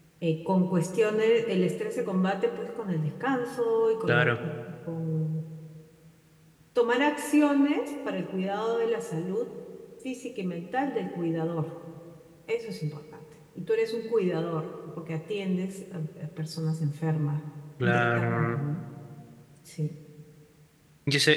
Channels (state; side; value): identical; both; correlation 1.00